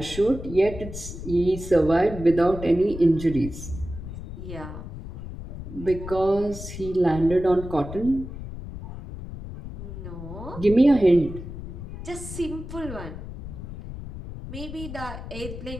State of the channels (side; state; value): left; noise; rumble, 10 dB below the sound